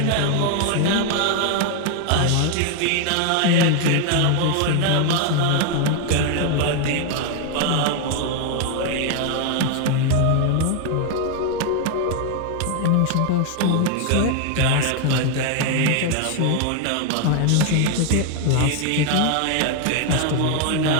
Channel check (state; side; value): different; both; correlation 0.01